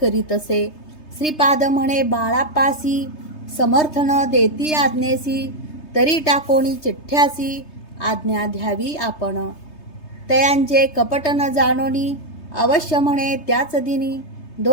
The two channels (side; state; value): right; late; 3.3 ms